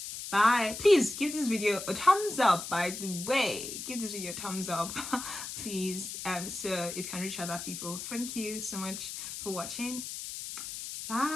Bye. Please give this video a thumbs up, by the way. Give this video a thumbs up, please, so it can reach other people. Thank you so much for watching.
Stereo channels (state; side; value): noise; left; hiss, 8 dB below the sound